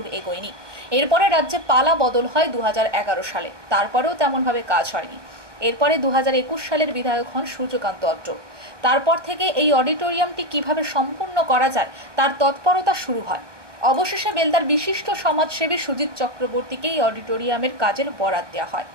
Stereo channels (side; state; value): left; late; 1.1 ms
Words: এগোয়নি। এরপরে রাজ্যে পালা বদল হয় 2011 সালে, তারপরেও তেমনভাবে কাজ হয়নি। এরপরে 2021 সালের বিধায়ক হন সূর্যকান্ত অত্র। তারপর থেকে এই অডিটোরিয়ামটি কিভাবে সম্পূর্ণ করা যায় তার তৎপরতা শুরু হয়। অবশেষে বেলদার বিশিষ্ট সমাজসেবী সুজিত চক্রবর্তীকে এই অডিটোরিয়ামের কাজের বরাত দেওয়া হয়,